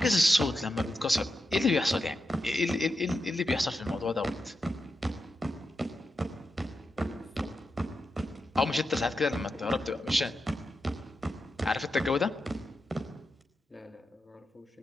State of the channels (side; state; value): both; normal; correlation 0.88